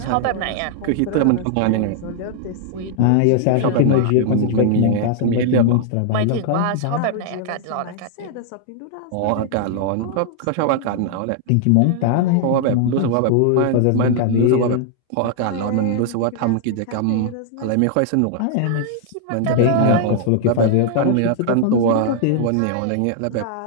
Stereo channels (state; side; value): different; both; correlation -0.01